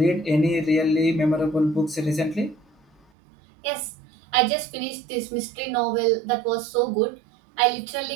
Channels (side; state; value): left; drops out; at 3.0 s